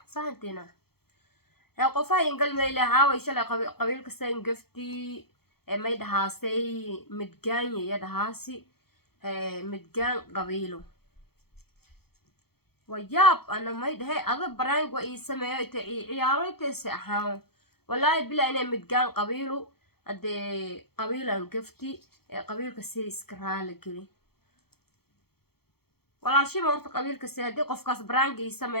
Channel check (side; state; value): right; late; 0.95 ms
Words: fahantina ya qofa in galmay leeyahay shalay qabiilka san gafti may dhahaasay midgaan ya dhahaasi midgaan qabiilo wayaab ana may dhahay ada barang wa isameeyo ciyaaraytay ahaan wallahi bila inay midgaan qabiilo ade qabiilan gafti qabiilka si iska raali gali walaashii ma horta qabiilka si hadii qofkaas barang